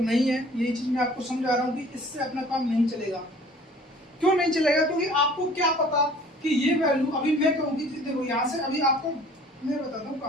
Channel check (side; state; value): both; normal; correlation 0.50